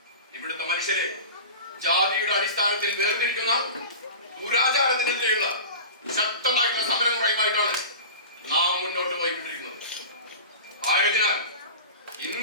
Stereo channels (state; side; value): inverted; both; correlation -0.32